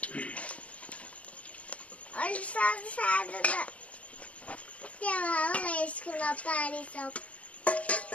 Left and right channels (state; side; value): late; right; 0.065 ms